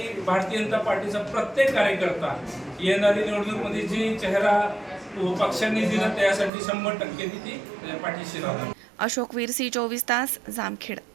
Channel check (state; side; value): drops out; left; at 6.5 s